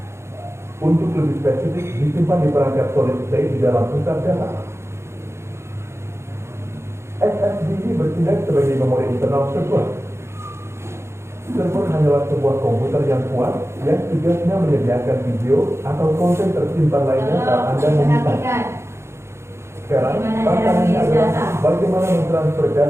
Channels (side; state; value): left; late; 0.13 ms